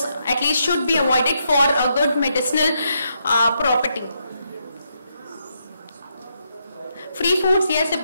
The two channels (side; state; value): both; inverted; correlation -0.79